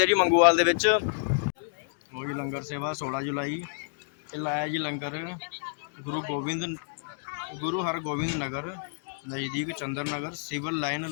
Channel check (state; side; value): silent; right; digital silence